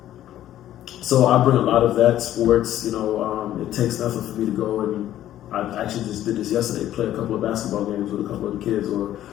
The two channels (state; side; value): quieter; right; 12.6 dB